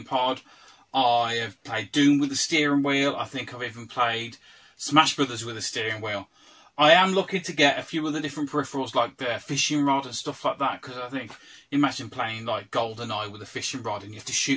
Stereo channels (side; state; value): both; identical; correlation 1.00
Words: Pod. I have played Doom with the steering wheel. I think I've even played Smash Brothers with a steering wheel. I am looking to get a few other different peripherals like the fishing rod and stuff like that, because I think, imagine playing like GoldenEye with a fishing rod and you have to